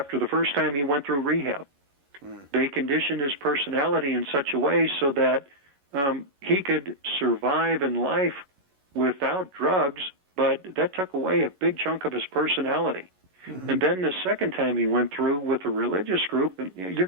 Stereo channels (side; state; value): left; late; 11 ms